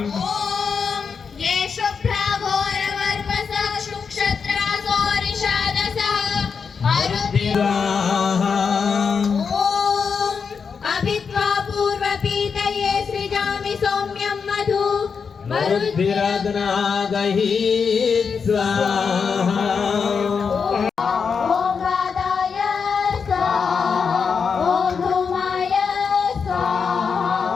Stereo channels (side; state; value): right; quieter; 5.9 dB